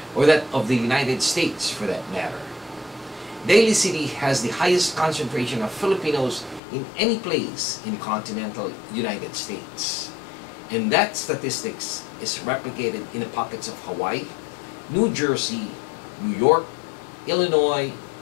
or that of the United States for that matter. Daly City has the highest concentration of Filipinos in any place in the continental United States. And that statistics is replicated in the pockets of Hawaii, New Jersey, New York, Illinois,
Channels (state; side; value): drops out; right; at 6.6 s